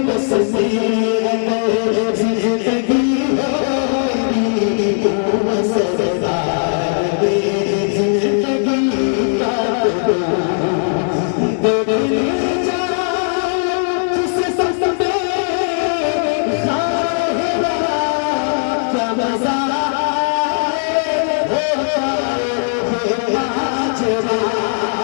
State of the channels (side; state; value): right; silent; digital silence